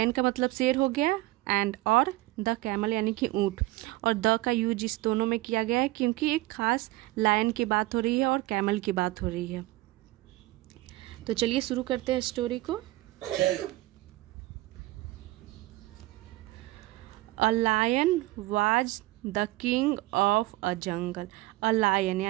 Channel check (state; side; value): quieter; left; 18.8 dB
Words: का मतलब शेर हो गया, एंड और द कैमल यानी कि ऊँट, और द का यूज इस दोनों में किया गया है क्योंकि एक खास लायन की बात हो रही है और कैमल की बात हो रही है। तो चलिए शुरू करते हैं स्टोरी को। A lion was the king of a jungle। A lion